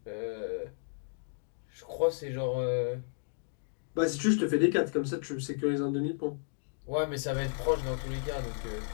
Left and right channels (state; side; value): silent; right; digital silence